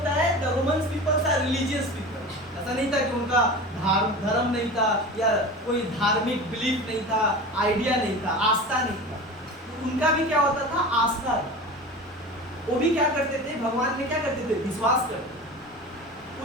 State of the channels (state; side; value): normal; both; correlation 0.32